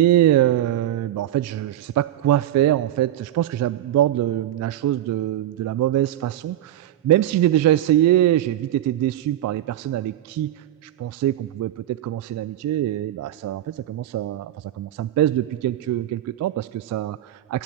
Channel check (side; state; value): left; quieter; 12.5 dB